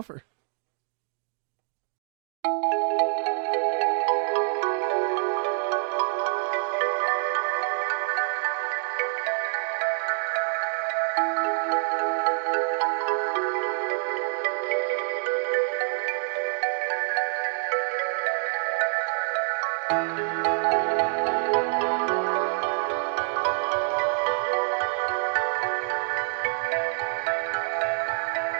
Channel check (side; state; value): left; silent; digital silence